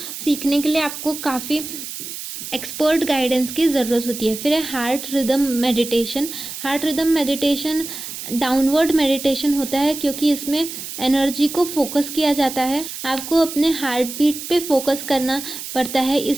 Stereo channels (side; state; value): right; noise; hiss, 9 dB below the sound